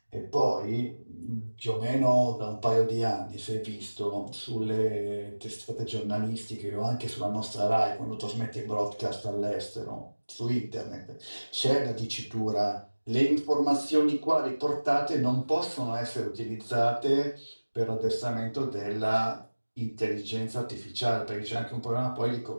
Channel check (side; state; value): both; inverted; correlation -1.00